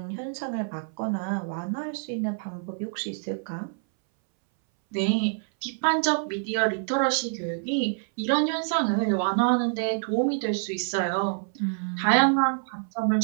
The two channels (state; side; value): silent; left; 60 dB below the other